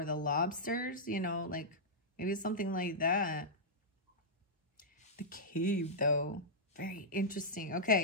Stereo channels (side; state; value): both; normal; correlation -0.10